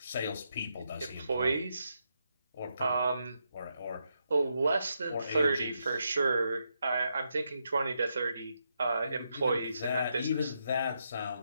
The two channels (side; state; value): both; inverted; correlation -0.81